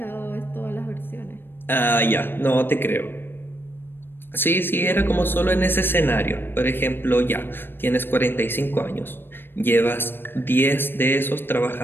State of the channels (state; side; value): late; right; 0.10 ms